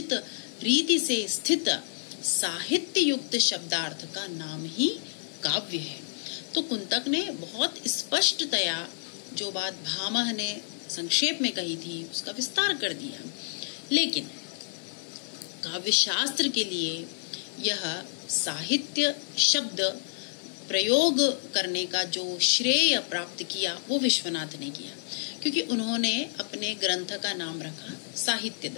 रीति से स्थित साहित्य युक्त शब्दार्थ का नाम ही काव्य है। तो कुंतक ने बहुत स्पष्टतया जो बात भामह ने संक्षेप में कही थी उसका विस्तार कर दिया। लेकिन काव्य शास्त्र के लिए यह साहित्य शब्द प्रयोग करने का जो श्रेय प्राप्त किया वो विश्वनाथ ने किया, क्योंकि उन्होंने अपने ग्रंथ का नाम रखा साहित्य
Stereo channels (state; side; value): silent; right; digital silence